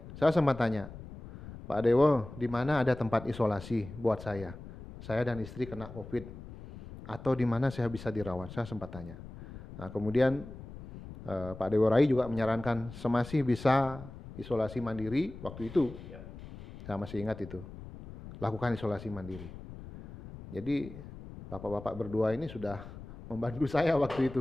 Saya sempat tanya, Pak Dewo, di mana ada tempat isolasi buat saya? Saya dan istri kena COVID. Atau di mana saya bisa dirawat? Saya sempat tanya. Nah kemudian Pak Dewo Rai juga menyarankan semasih bisa isolasi mandiri waktu itu. Saya masih ingat itu. Lakukan isolasi mandiri. Jadi bapak-bapak berdua ini sudah membantu saya waktu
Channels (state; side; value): noise; left; rumble, 14 dB below the sound